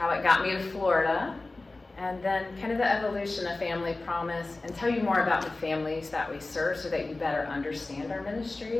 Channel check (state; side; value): quieter; right; 3.2 dB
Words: it got me to Florida, and then kind of the evolution of Family Promise, and tell you more about the families that we serve so that you better understand our